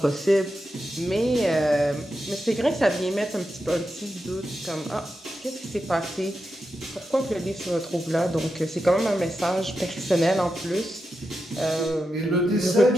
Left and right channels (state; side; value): normal; both; correlation 0.88